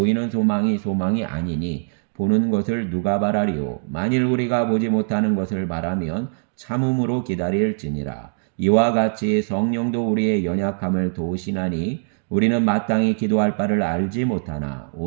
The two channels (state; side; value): silent; left; digital silence